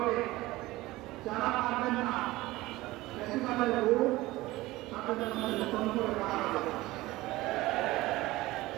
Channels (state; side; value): quieter; left; 18.7 dB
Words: যারা পারবেন না বেশিরভাগের ভোট তাদের মধ্যে নতুন করে করা হবে।